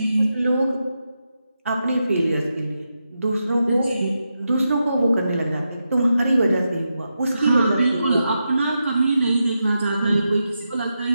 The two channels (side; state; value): both; inverted; correlation -0.87